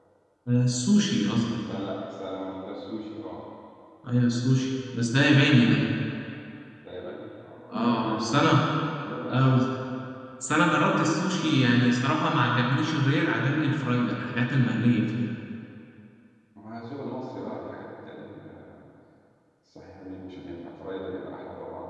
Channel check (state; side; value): identical; both; correlation 1.00